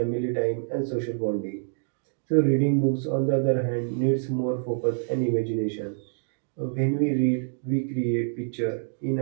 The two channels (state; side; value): silent; left; digital silence